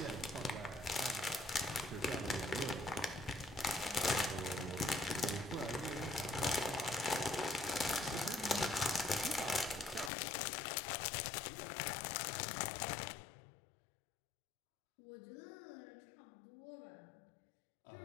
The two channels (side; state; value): right; drops out; at 10.1 s